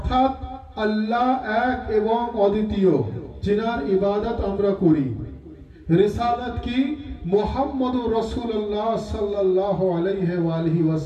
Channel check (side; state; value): both; identical; correlation 1.00